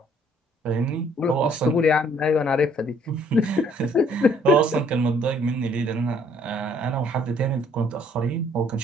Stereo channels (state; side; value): normal; both; correlation 0.62